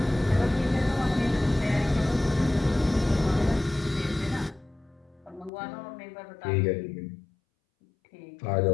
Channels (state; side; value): drops out; right; at 5.5 s